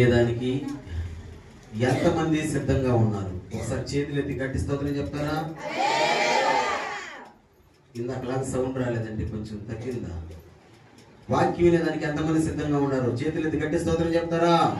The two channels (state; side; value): identical; both; correlation 1.00